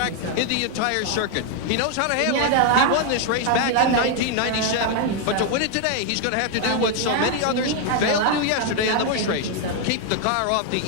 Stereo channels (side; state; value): both; different; correlation 0.01